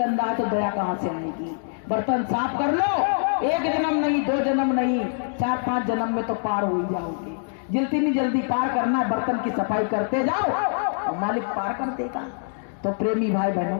है तो दया कहाँ से आएगी? बर्तन साफ कर लो, एक जन्म नहीं, 2 जन्म नहीं, 4-5 जन्म में तो पार हो ही जाओगे। जितनी जल्दी पार करना है, बर्तन की सफाई करते जाओ और मालिक पार कर देगा। तो प्रेमी भाई बहनों,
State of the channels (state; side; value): silent; right; digital silence